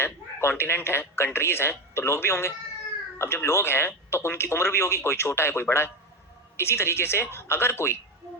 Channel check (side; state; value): both; normal; correlation 0.17